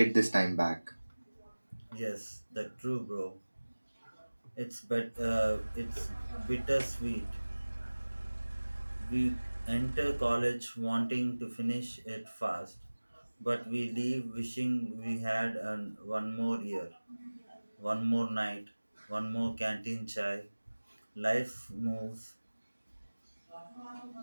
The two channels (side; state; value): both; inverted; correlation -1.00